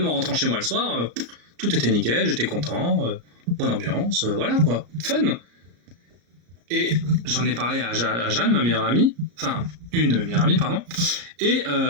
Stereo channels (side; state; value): left; late; 34 ms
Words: en rentrant chez moi le soir, tout était nickel, j'étais content, bonne ambiance, voilà quoi, fun. Et j'en ai parlé à Jeanne, ma meilleure amie, enfin, une de mes meilleures amies, pardon. Et